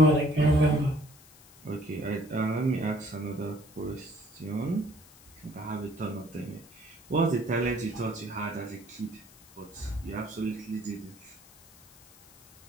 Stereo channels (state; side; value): noise; left; hiss, 24 dB below the sound